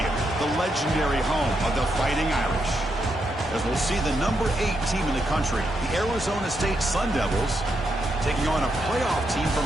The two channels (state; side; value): normal; both; correlation 0.81